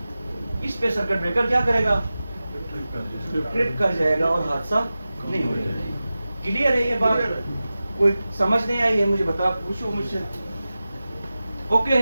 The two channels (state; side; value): inverted; both; correlation -0.95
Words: इस पे सर्किट ब्रेकर क्या करेगा? ट्रिप कर जाएगा और हादसा नहीं हो जाएगा। क्लियर है ये बात? कोई समझ नहीं आई है मुझे बता, पूछो मुझसे। ओके